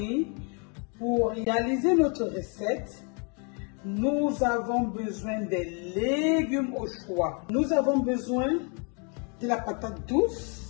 pour réaliser notre recette, nous avons besoin des légumes au choix. Nous avons besoin de la patate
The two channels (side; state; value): right; quieter; 36.7 dB